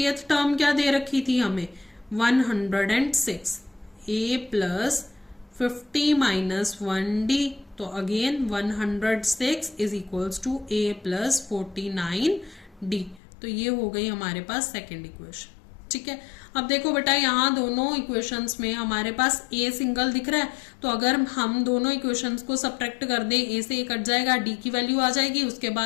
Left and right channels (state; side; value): drops out; right; at 13.2 s